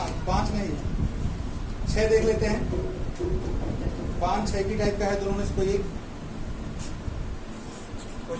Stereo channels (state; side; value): identical; both; correlation 1.00